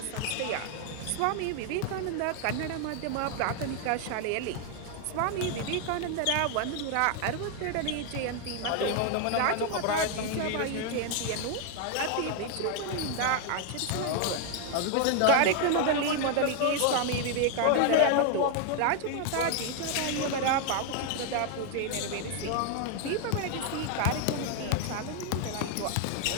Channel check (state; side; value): different; both; correlation 0.00